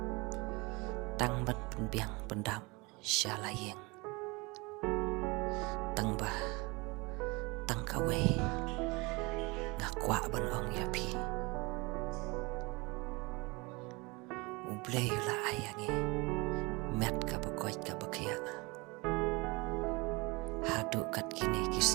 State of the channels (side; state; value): left; quieter; 26.0 dB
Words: tang ban penbiang pendam syalaying tang bah tang kawe ngakwa ban ong yapi ublay la ayangi met ka bakoy ka bakya hadu kat kini